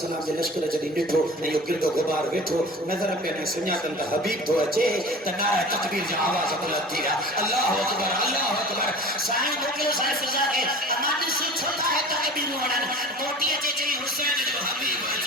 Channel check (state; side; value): normal; both; correlation 0.40